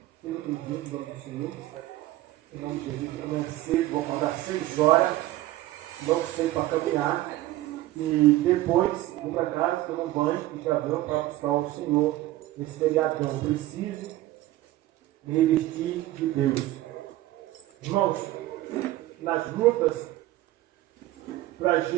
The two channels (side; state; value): left; quieter; 16.0 dB